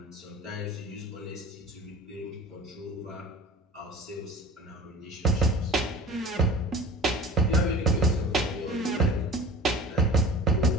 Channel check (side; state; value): both; normal; correlation 0.40